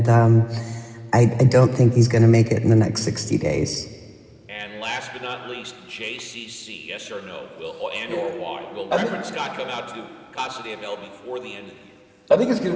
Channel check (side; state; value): both; identical; correlation 1.00